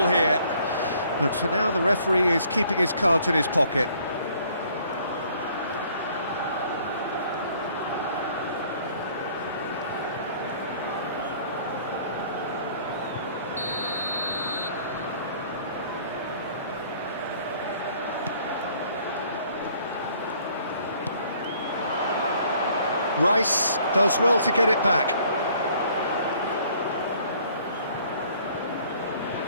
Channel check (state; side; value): inverted; both; correlation -0.59